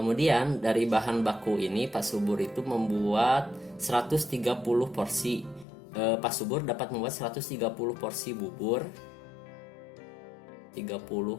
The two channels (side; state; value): right; drops out; at 5.7 s